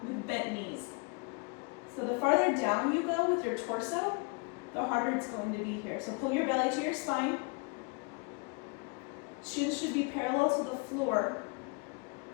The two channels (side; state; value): right; quieter; 32.1 dB